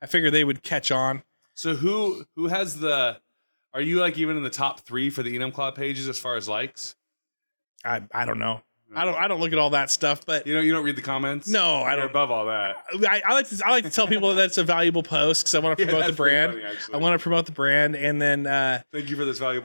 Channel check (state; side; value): inverted; both; correlation -1.00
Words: I figured they would catch on. So who has the? Are you like even in the top 3 for the Enumclaw pages as far as likes? I don't know. I don't look at all that stuff, but you don't read the comments. No, I You're don't. above all that. I like to tell people that that's a valuable post because I want to promote the brand. Funny, I want to promote the brand, and then thank you for this